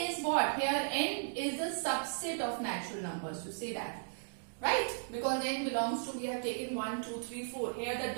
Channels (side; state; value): left; silent; digital silence